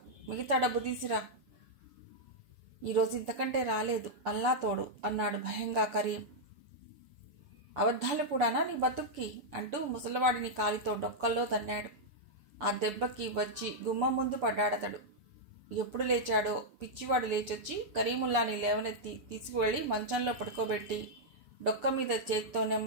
మిగతా డబ్బు తీసిరా. ఈరోజు ఇంతకంటే రాలేదు, అల్లా తోడు అన్నాడు భయంగా కరీం. అబద్ధాలు కూడానా నీ బతుక్కి అంటూ ముసలివాడిని కాలితో డొక్కల్లో తన్నాడు. ఆ దెబ్బకి వచ్చి గుమ్మం ముందు పడ్డాడతడు. ఎప్పుడు లేచాడో పిచ్చివాడు లేచొచ్చి కరీముల్లాని లేవనెత్తి తీసుకువెళ్లి మంచంలో పడుకోబెట్టి డొక్క మీద చేతితో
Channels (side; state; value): left; late; 6.9 ms